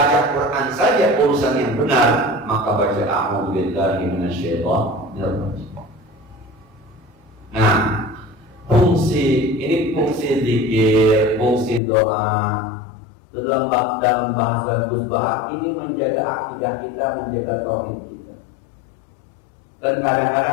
Quran saja urusan yang benar, maka baca a'udzu billahi minasyaitonir rajim. Nah, fungsi zikir, fungsi doa itu dalam bahasa Gus Baha ini menjaga akidah kita, menjaga tauhid kita. Dan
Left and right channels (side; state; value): right; drops out; at 11.8 s